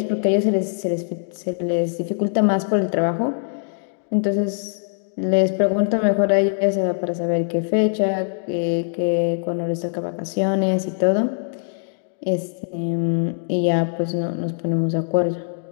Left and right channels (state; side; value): silent; right; digital silence